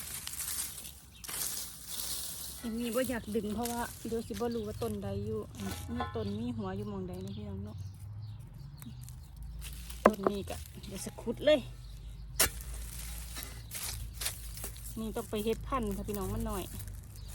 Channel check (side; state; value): both; identical; correlation 1.00